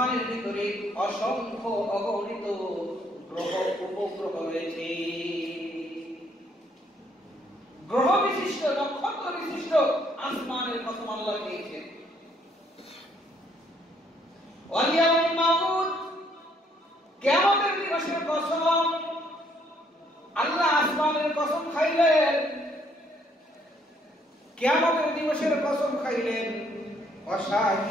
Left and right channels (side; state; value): both; normal; correlation 0.67